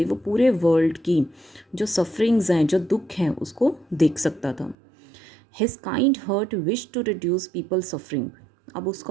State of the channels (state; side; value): drops out; left; at 4.8 s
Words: वो पूरे वर्ल्ड की जो सफरिंग्स हैं, जो दुख हैं, उसको देख सकता था. His kind heart wish to reduce people suffering. अब